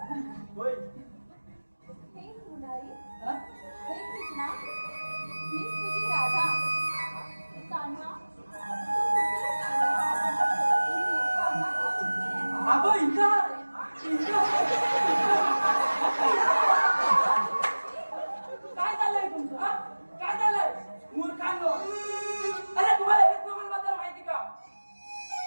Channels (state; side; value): inverted; both; correlation -1.00